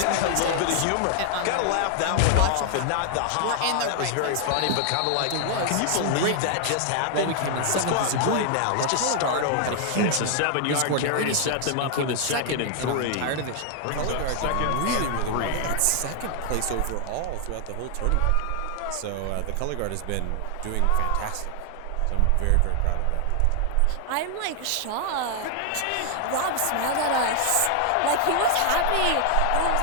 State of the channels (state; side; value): different; both; correlation 0.00